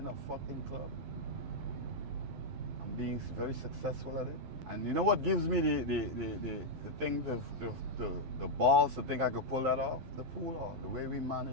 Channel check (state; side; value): late; left; 12 ms